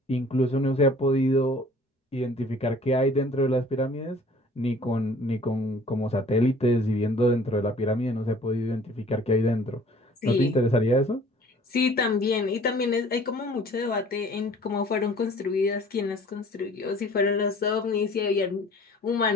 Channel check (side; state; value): both; normal; correlation 0.51